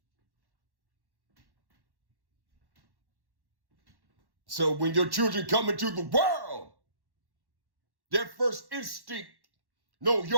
So when your children come into the world, their first instinct, no,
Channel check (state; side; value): late; left; 1.1 ms